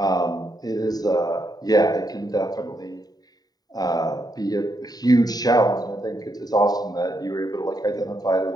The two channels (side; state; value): right; late; 0.18 ms